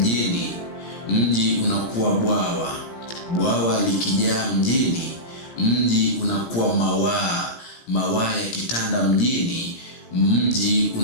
mji unakuwa bwawa likijaa mjini, mji unakuwa mawaa yakitanda mjini, mji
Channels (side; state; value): right; late; 17 ms